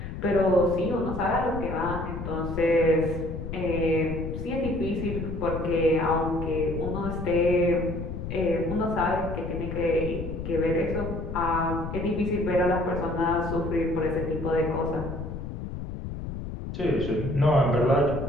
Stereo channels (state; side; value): noise; left; rumble, 7 dB below the sound